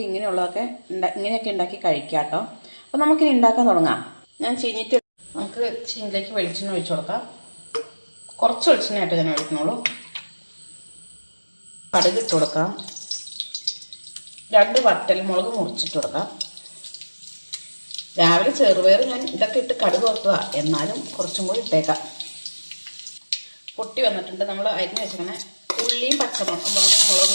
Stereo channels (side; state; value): both; inverted; correlation -1.00